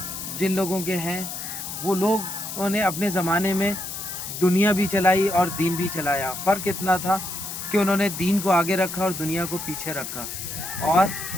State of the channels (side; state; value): left; noise; hiss, 7 dB below the sound